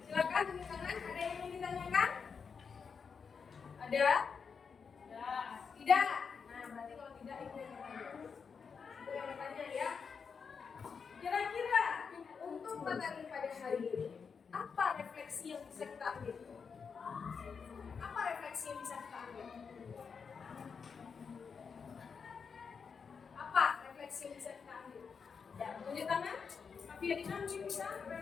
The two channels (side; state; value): right; quieter; 5.9 dB